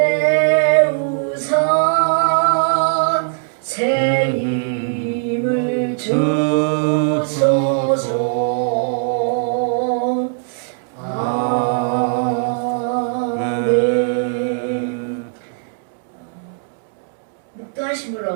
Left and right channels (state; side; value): silent; left; 67 dB below the other